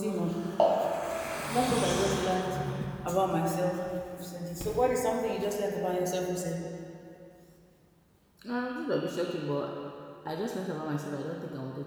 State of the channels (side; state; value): both; identical; correlation 1.00